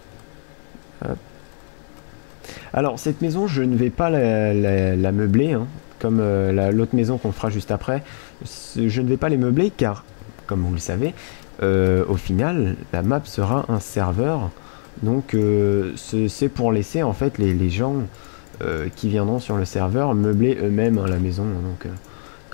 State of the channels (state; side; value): silent; right; digital silence